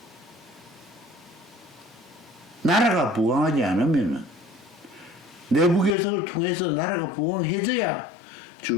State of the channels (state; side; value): drops out; right; at 6.0 s